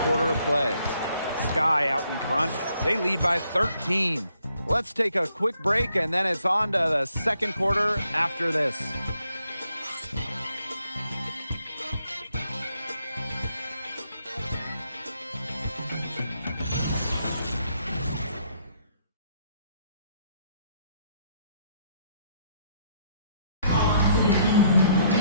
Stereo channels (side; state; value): both; inverted; correlation -0.71